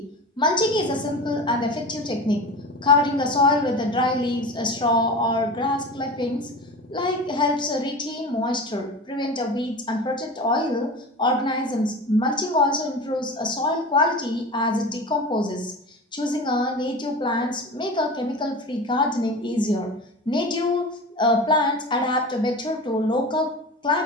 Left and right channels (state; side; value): normal; both; correlation 0.31